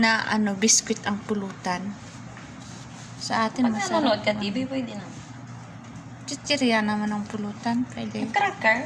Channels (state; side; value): identical; both; correlation 1.00